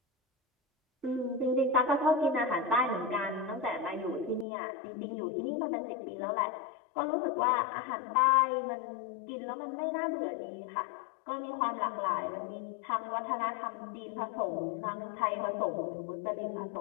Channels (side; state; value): right; drops out; at 4.5 s